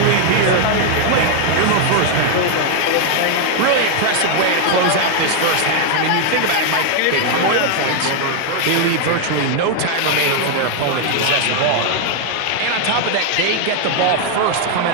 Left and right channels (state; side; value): different; both; correlation 0.00